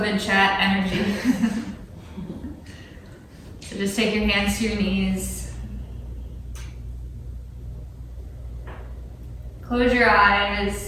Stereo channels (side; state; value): both; identical; correlation 1.00